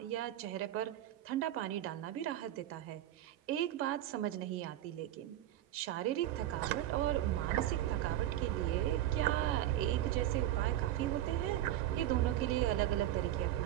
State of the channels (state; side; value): quieter; left; 13.3 dB